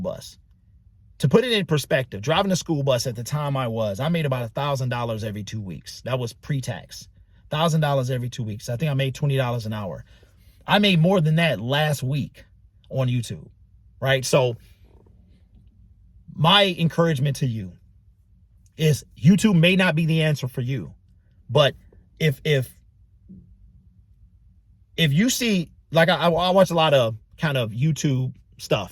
To put it in perspective, driving a school bus at the time I made about $1,000 every 2 weeks. That was pre-tax. $1,000 every 2 weeks. I think I made $20 an hour. I made more than that last week on YouTube, right? So my encouragement to you is YouTube may not be the answer for you, but if you see, like I watch a lot of kind of YouTube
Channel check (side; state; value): both; identical; correlation 1.00